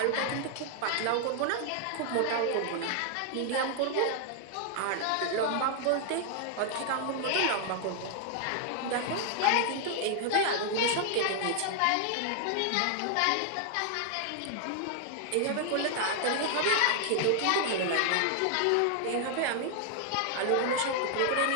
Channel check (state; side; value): different; both; correlation 0.00